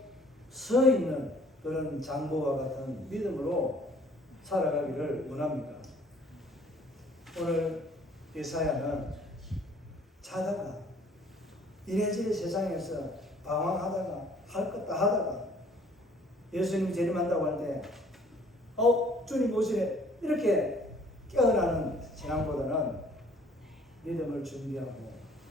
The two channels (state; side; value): normal; both; correlation 0.57